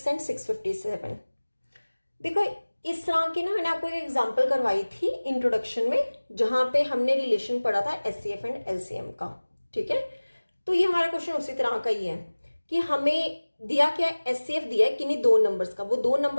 and 657। देखो इस तरह की ना मैंने आपको एक एग्जांपल करवाई थी इंट्रोडक्शन में, जहां पे हमने रिलेशन पढ़ा था एचसीएफ एंड एलसीएम का। ठीक है, तो ये हमारा क्वेश्चन उसी तरह का ही है कि हमें दिया क्या है? एचसीएफ दिया है किन्हीं 2 नंबर्स का। वो 2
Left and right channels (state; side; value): inverted; both; correlation -1.00